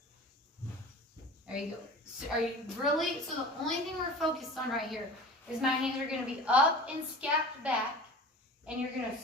There you go. So are you really, so the only thing we're focused on right here is my hands are going to be up and scapped back. And you're going to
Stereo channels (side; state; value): both; normal; correlation 0.39